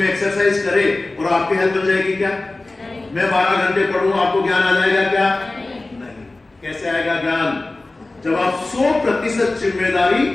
एक्सरसाइज करे और आपकी हेल्थ बन जाएगी क्या? मैं 12 घंटे पढ़ूं, आपको ज्ञान आ जाएगा क्या? नहीं। कैसे आएगा ज्ञान? जब आप 100% जिम्मेदारी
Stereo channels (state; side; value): quieter; right; 3.0 dB